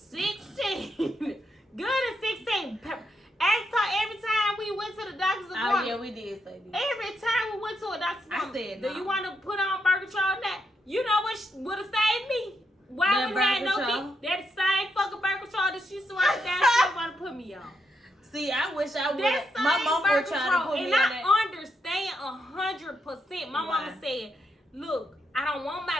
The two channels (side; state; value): both; normal; correlation 0.81